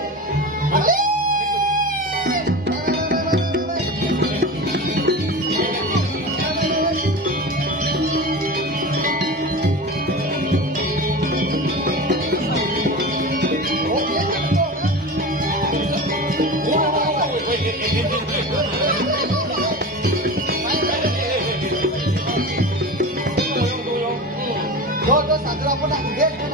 Dodo sadra apa nak gede?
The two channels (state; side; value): normal; both; correlation 0.29